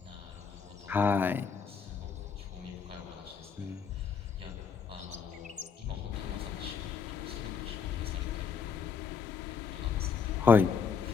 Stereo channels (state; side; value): quieter; right; 5.9 dB